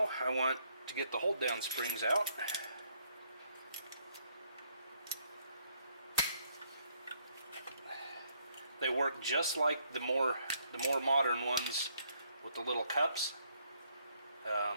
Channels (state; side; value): inverted; both; correlation -0.70